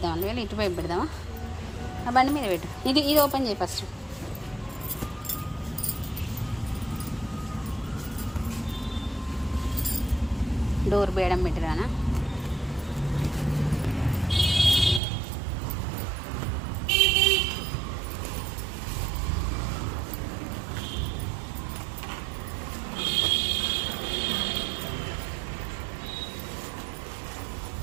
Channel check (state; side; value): drops out; left; at 15.0 s